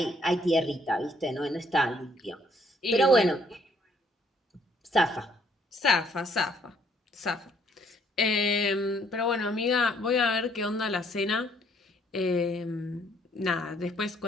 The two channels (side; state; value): both; normal; correlation 0.66